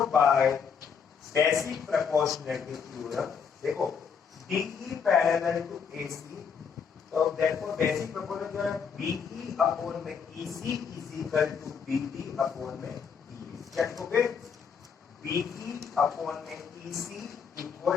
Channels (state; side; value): quieter; right; 6.6 dB